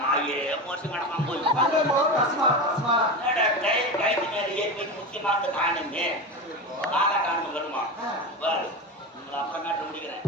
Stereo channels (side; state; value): both; normal; correlation 0.23